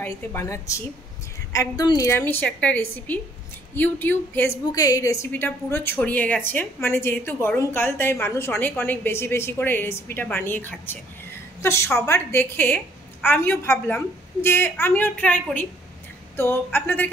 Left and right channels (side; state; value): both; normal; correlation 0.64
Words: বানাচ্ছি। একদম নিরামিষ একটা রেসিপি। ইউটিউব ফেসবুকে এই রেসিপিটা পুরো ছড়িয়ে গেছে, মানে যেহেতু গরমকাল তাই মানুষ অনেক অনেক বেশি বেশি করে এই রেসিপিটা বানিয়ে খাচ্ছে। তো সবার দেখে আমিও ভাবলাম যে আমিও ট্রাই করি। তো